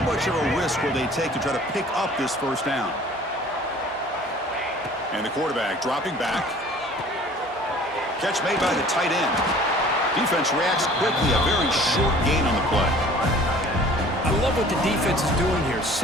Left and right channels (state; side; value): normal; both; correlation 0.49